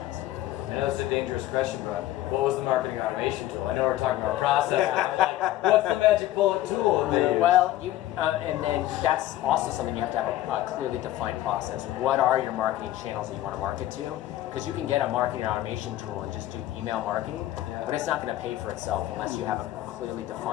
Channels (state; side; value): quieter; right; 14.5 dB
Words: I know it's a dangerous question, but what was the marketing automation tool? I know we're talking about process. Like, what's the magic bullet tool? Well, and then that's also something you have to have a clearly defined process. What are your marketing channels that you want to market to? Because you can get a marketing automation tool and just do email marketing, but it's not going to pay for itself unless you have a clearly